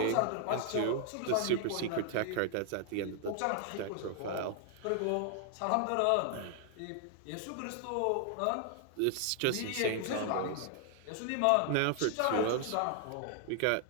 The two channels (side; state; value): both; different; correlation 0.00